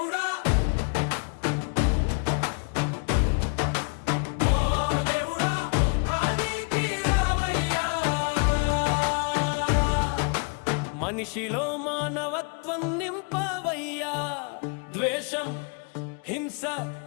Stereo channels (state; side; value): quieter; right; 34.9 dB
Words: ఓ దేవుడా, లోకానికి రావయ్యా. మనిషిలో మానవత్వం నింపవయ్యా. ద్వేషం, హింస,